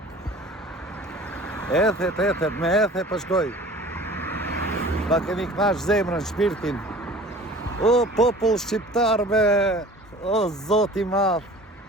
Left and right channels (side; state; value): both; normal; correlation 0.44